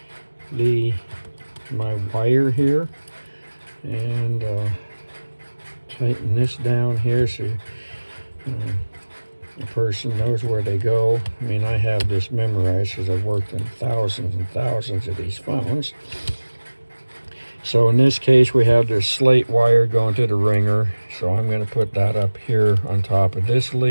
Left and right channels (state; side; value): inverted; both; correlation -1.00